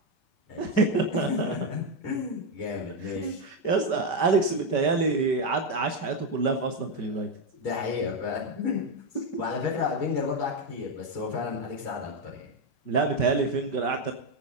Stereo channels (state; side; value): late; right; 5.2 ms